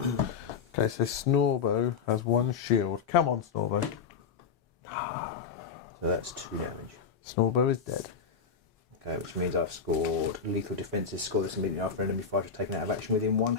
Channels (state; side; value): quieter; right; 6.2 dB